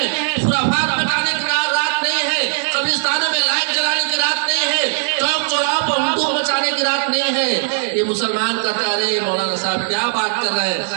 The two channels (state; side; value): silent; left; digital silence